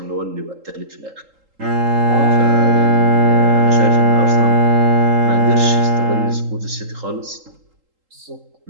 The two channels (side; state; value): left; late; 3.8 ms